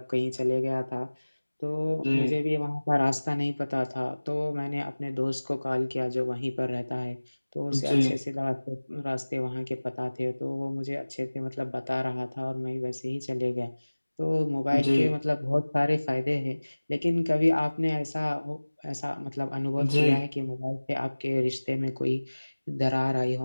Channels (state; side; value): inverted; both; correlation -1.00